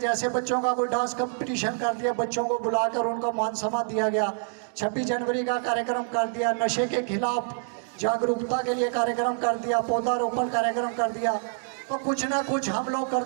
बच्चों का कोई डांस कंपटीशन कर दिया, बच्चों को बुलाकर उनको मान सम्मान दिया गया। 26 जनवरी का कार्यक्रम कर दिया, नशे के खिलाफ जागरूकता के लिए कार्यक्रम कर दिया, पौधारोपण कार्यक्रम कर दिया। तो कुछ ना कुछ हम लोग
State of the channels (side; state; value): left; silent; 60 dB below the other